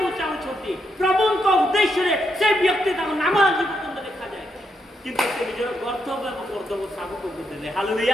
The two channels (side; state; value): both; normal; correlation 0.80